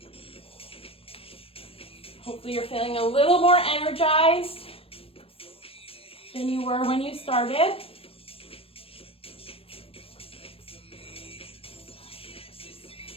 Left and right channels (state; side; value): late; right; 0.27 ms